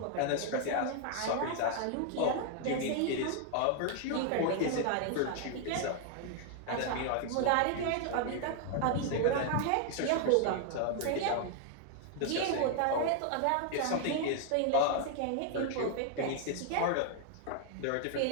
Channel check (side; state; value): both; different; correlation 0.00